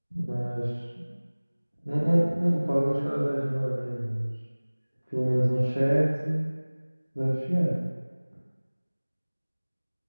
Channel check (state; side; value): inverted; both; correlation -1.00